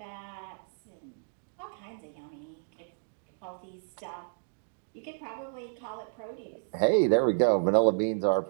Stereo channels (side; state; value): left; silent; digital silence